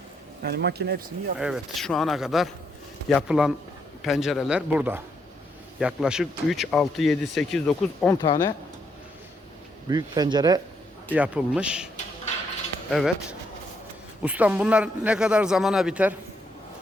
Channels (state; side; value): normal; both; correlation 0.76